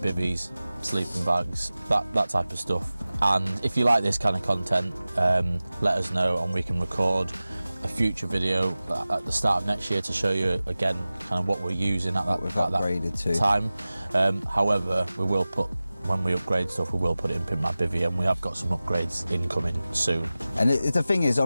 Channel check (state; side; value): inverted; both; correlation -0.97